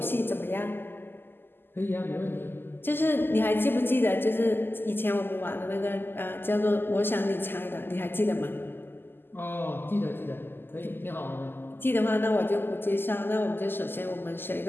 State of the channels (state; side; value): late; right; 0.099 ms